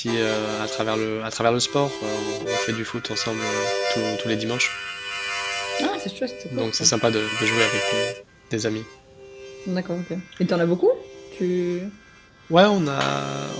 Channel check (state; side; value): identical; both; correlation 1.00